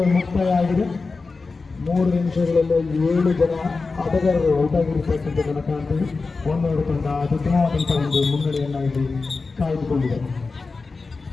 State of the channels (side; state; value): right; quieter; 4.1 dB